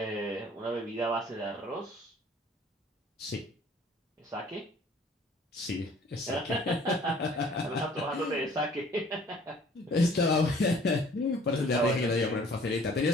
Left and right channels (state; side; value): normal; both; correlation 0.54